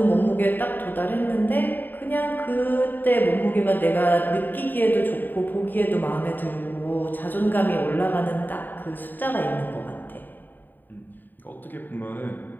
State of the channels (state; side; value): late; right; 0.090 ms